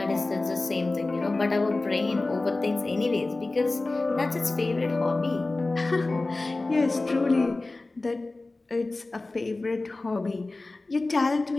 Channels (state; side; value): quieter; right; 3.2 dB